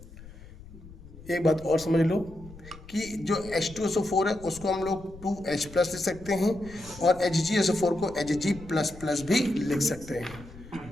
एक बात और समझ लो कि जो H2SO4 है उसको हम लोग 2H प्लस लिख सकते हैं और HgSO4 को Hg++ भी लिख सकते हैं।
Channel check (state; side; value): noise; left; rumble, 18 dB below the sound